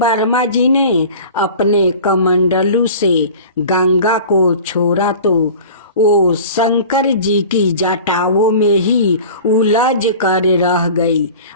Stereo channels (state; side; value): inverted; both; correlation -0.40